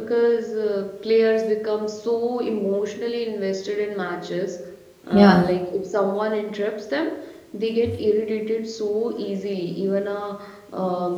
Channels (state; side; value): identical; both; correlation 1.00